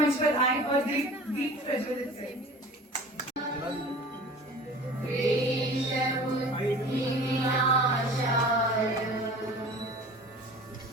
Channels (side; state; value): both; normal; correlation 0.41